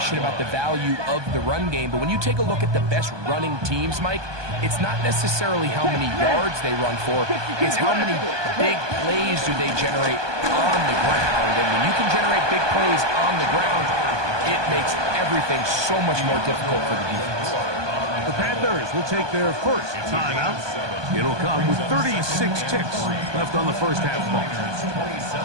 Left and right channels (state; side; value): late; left; 1.2 ms